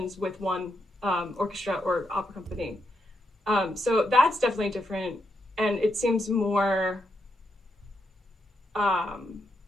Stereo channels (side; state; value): both; normal; correlation 0.81